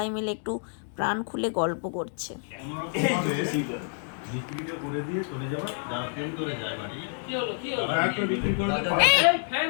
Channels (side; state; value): right; silent; 55 dB below the other